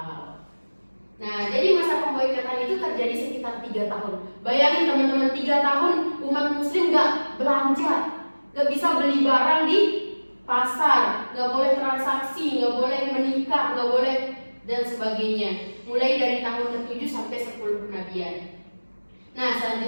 Nah, jadi masa pemboikotan itu terjadi sekitar 3 tahun. Bayangin teman-teman, 3 tahun umat muslim gak belanja, gak bisa beli barang di pasar, gak boleh transaksi, gak boleh menikah, gak boleh dan sebagainya. Mulai dari tahun ke-7 sampai 10 kenabian. Nah,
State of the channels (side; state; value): both; inverted; correlation -1.00